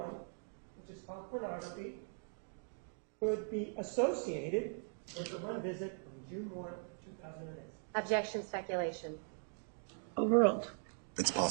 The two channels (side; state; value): left; silent; 51 dB below the other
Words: which is called pornography, could be associated with the one visit on June 1 of 2008? Objection speculation. Overruled. It's